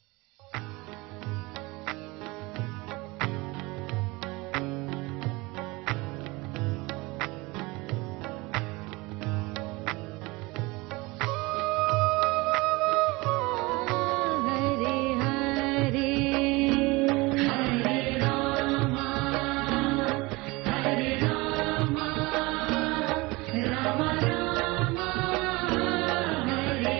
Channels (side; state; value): left; quieter; 23.5 dB